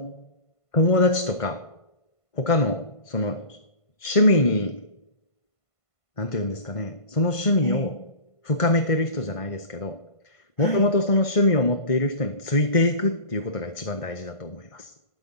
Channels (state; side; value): late; right; 1.5 ms